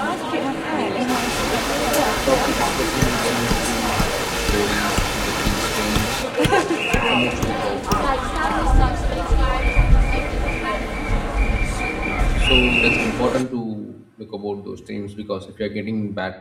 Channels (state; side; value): identical; both; correlation 1.00